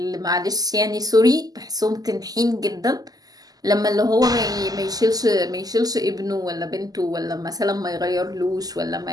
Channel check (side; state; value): left; late; 0.18 ms